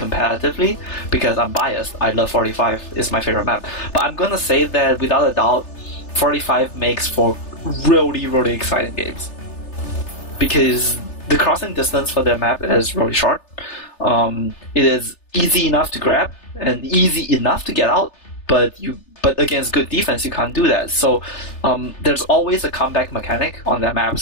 because I'm biased. I love 45; it's my favorite map. But I'm gonna say that without a doubt, 45 makes for really, really exciting games because the crossing distance for their map is really short. It is easy enough to grab and easy enough to get out, but against good defense you can't do that. So there's always a comeback mechanic on that map.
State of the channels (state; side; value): late; right; 3.3 ms